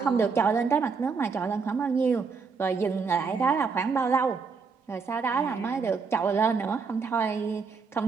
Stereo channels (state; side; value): quieter; left; 5.2 dB